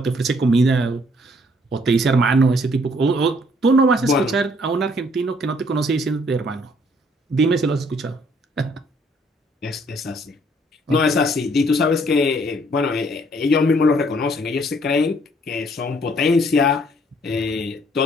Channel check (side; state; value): both; normal; correlation 0.64